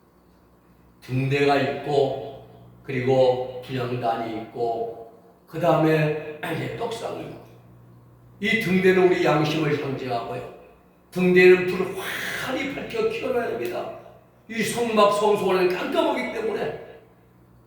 등대가 있고 그리고 분향단이 있고 그 다음에 떡상이 있고 이 등대는 우리 양심을 상징하고요. 등대는 불을 환히 밝혀 켜놔야 됩니다. 이 성막 성소는 깜깜하기 때문에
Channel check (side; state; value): both; identical; correlation 1.00